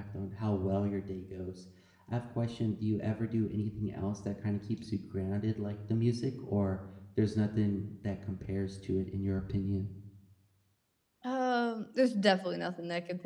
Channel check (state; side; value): identical; both; correlation 1.00